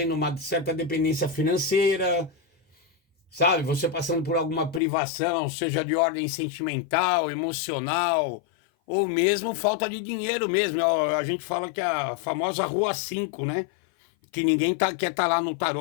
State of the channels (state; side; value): drops out; right; at 4.8 s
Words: uma certa dependência financeira, sabe? Você passando por alguma privação, seja de ordem sentimental, emocional, ou mesmo falta de dinheiro mesmo. A gente fala que é a famosa Rua 5, né? Que ninguém quer estar lá no